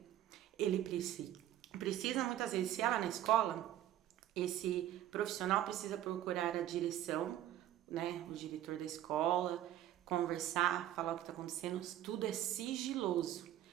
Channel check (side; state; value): left; quieter; 12.5 dB